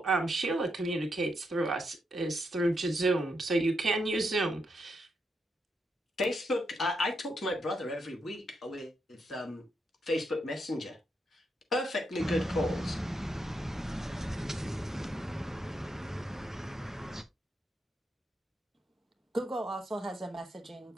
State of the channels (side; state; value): both; normal; correlation 0.81